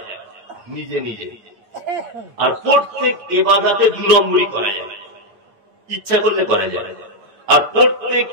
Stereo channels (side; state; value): left; late; 9.5 ms